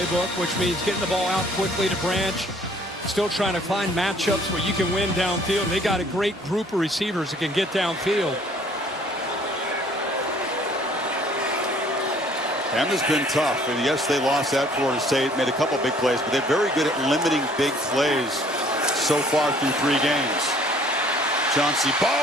which means getting the ball out quickly to Branch. Still trying to find matchups where you can win downfield. They got a great group of receivers that can get downfield. Bama's been tough, and yes, they lost at Florida State, made a couple big plays, but they're very good at limiting big plays so far through 3 games. Chauncey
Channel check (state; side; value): normal; both; correlation 0.57